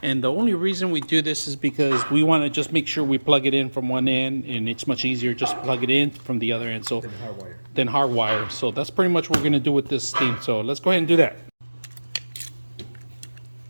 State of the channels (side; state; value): both; inverted; correlation -1.00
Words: and the only reason we do this is because we want to just make sure we plug it in from one end, and it's much easier just plug it in from the other end. So then hardwire. So that's pretty much what we're gonna do with this thing. So let's go ahead and do that.